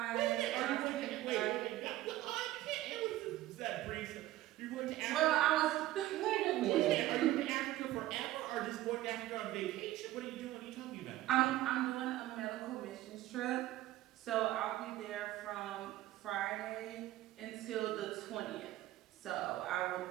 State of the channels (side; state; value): left; quieter; 15.5 dB